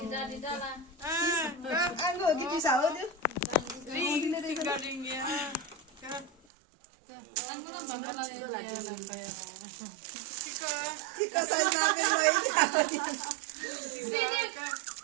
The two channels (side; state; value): left; drops out; at 6.3 s